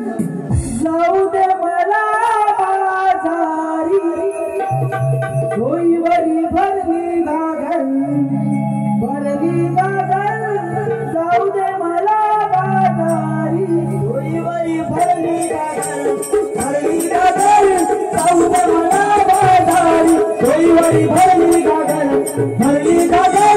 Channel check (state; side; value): identical; both; correlation 1.00